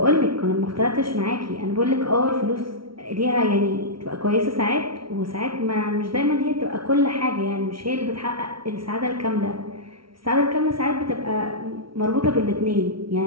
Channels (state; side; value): late; left; 0.74 ms